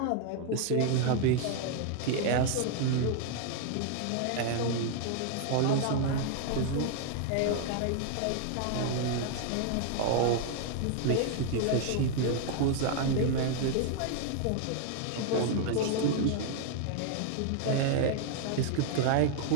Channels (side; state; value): both; different; correlation 0.00